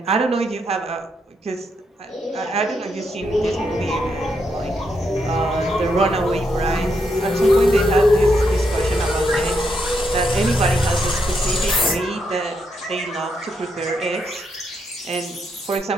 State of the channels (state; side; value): normal; both; correlation 0.79